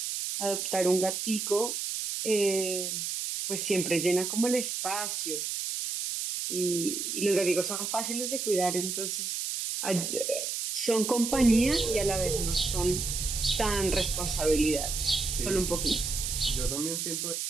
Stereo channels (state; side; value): noise; right; hiss, 3 dB below the sound